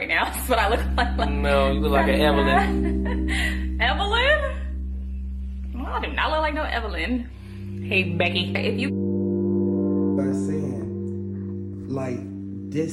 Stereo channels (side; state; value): both; identical; correlation 1.00